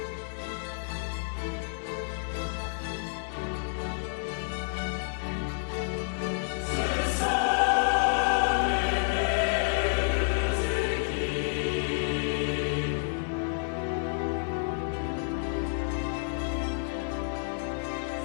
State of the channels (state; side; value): silent; right; 58 dB below the other